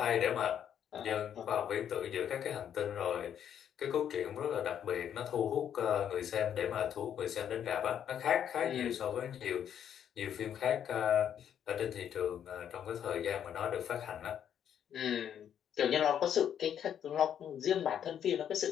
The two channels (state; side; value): quieter; right; 9.3 dB